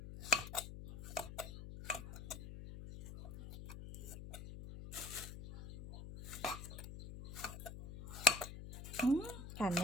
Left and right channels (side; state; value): left; noise; hum, 11 dB below the sound